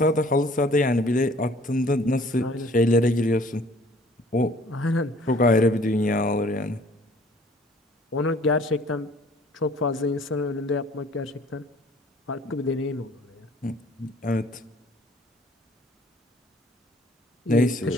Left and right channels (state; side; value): normal; both; correlation 0.55